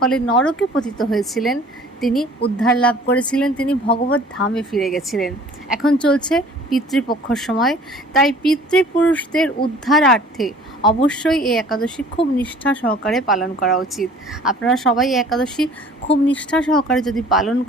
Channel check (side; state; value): both; normal; correlation 0.50